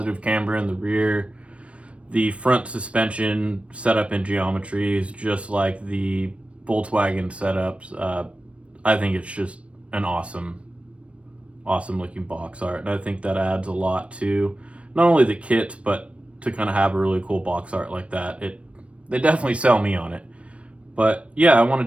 camber in the rear. The front suspension setup in geometry is just like the Volkswagen setups. I think it's just an awesome looking box art, and I think that adds a lot to not only the kit, but to kind of have a really cool box art like that. They definitely sell me on it. But yeah, I want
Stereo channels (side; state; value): left; late; 0.062 ms